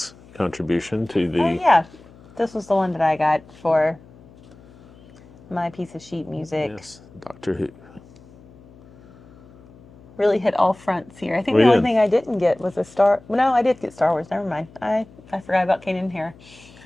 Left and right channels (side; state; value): left; noise; hum, 24 dB below the sound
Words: contribution to the... Oh, yeah. This was the one that I got for my piece of sheet music. Yes, Doctor Who. Really hit all fronts here. I think the only thing I didn't get was a Star... No, I did get Star Wars. Never mind. I forgot about Kanan here.